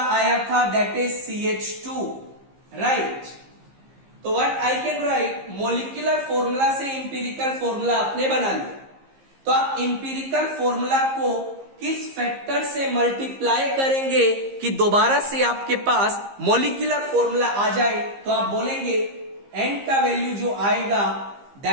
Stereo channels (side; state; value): left; late; 15 ms